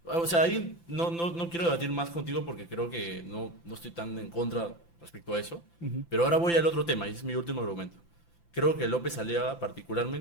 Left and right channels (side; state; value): right; late; 5.9 ms